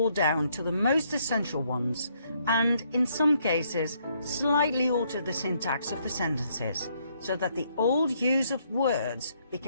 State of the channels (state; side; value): inverted; both; correlation -0.71